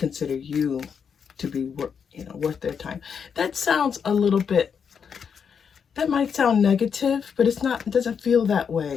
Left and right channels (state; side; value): quieter; right; 6.8 dB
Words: you to be worth their time. That sounds a little bit, that might sound negative, but it's not. It doesn't feel that